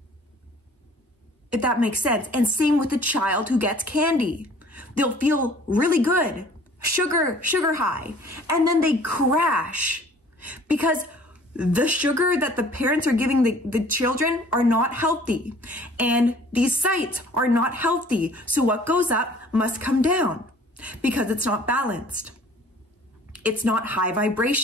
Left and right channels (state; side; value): normal; both; correlation 0.52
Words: If that makes sense. And same with the child who gets candy. They'll feel really good. Sugar high, and then they crash because the sugar that the parents are giving the children are not healthy, and these sites are not healthy. So what goes up must come down because it's not balanced. It's not high